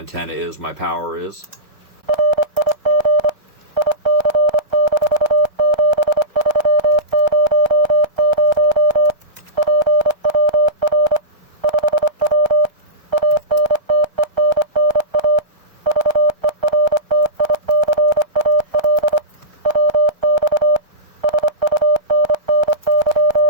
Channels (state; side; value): late; left; 1.3 ms